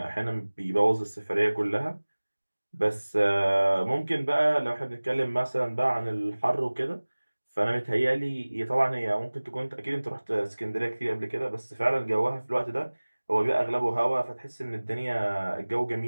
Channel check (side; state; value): both; inverted; correlation -1.00